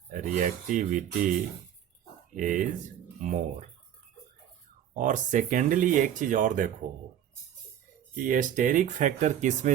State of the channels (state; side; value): quieter; left; 10.3 dB